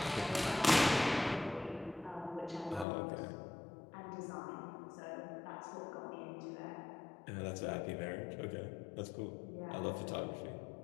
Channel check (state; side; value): drops out; right; at 2.9 s